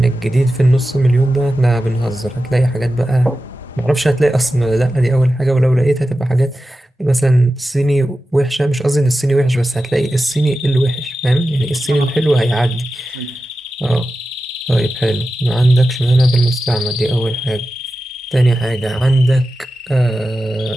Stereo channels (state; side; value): normal; both; correlation 0.93